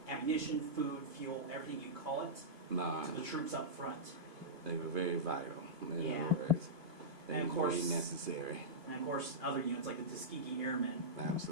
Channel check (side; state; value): left; late; 2.5 ms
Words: ammunition, food, fuel, everything you call it, to the troops up front. They were very vital, in other words. They were very necessary. And of course, other units like the Tuskegee Airmen.